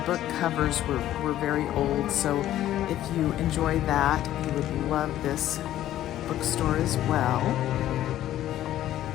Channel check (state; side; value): quieter; right; 12.9 dB